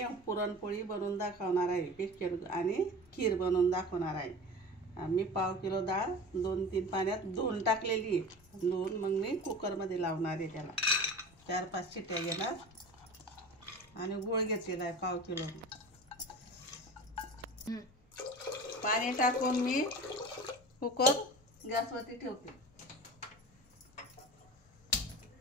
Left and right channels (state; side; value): normal; both; correlation 0.35